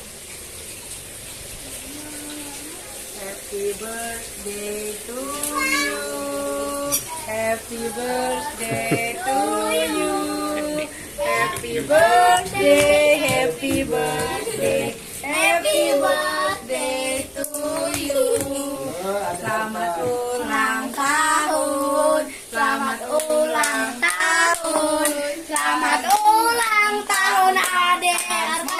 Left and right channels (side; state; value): both; identical; correlation 1.00